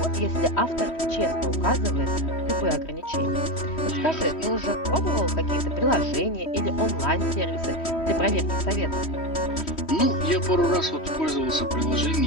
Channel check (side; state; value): right; late; 3.1 ms